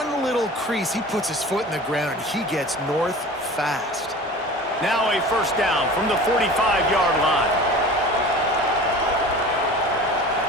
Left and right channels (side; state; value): both; normal; correlation 0.39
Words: little crease, he puts his foot in the ground, and he gets north fast. Now a first down from the 45-yard line.